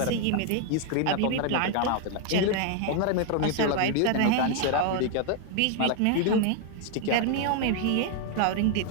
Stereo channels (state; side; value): different; both; correlation 0.00